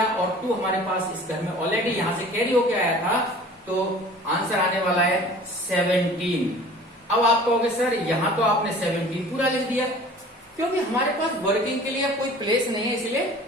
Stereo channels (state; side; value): normal; both; correlation 0.45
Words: और 2 हमारे पास इस घर में ऑलरेडी यहाँ से कैरी होके आया था, तो आंसर आने वाला है 17। अब आप कहोगे सर यहाँ तो आपने 17 पूरा लिख दिया, क्योंकि हमारे पास वर्किंग के लिए कोई प्लेस नहीं है, इसलिए